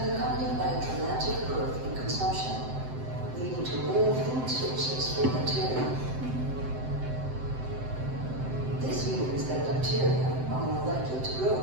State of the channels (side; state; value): left; late; 7.8 ms